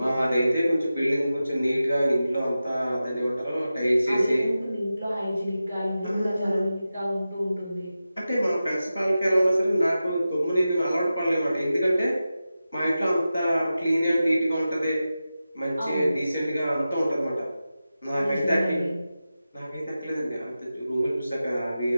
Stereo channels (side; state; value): both; inverted; correlation -0.93